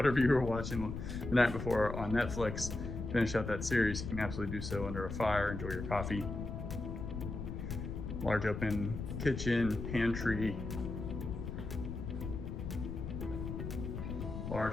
you were watching the night before on Netflix, finish out that series, you can absolutely do so under a fire, enjoy your coffee. Large open kitchen, pantry,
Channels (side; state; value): left; noise; rumble, 6 dB below the sound